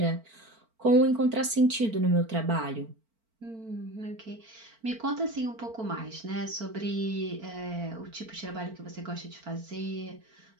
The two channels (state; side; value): late; left; 4.4 ms